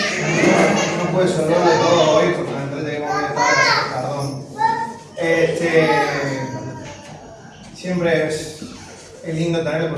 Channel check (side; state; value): both; identical; correlation 1.00